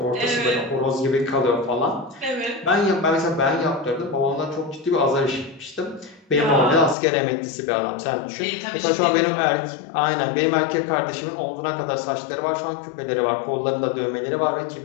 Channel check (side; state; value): right; drops out; at 7.0 s